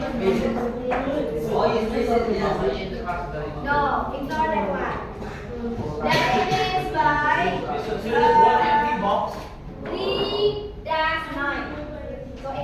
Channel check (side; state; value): both; identical; correlation 1.00